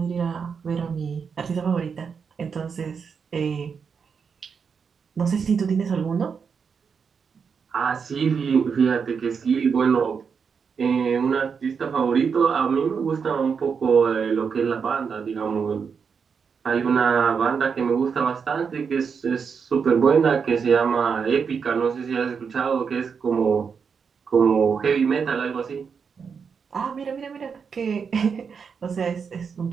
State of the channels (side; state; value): left; quieter; 6.1 dB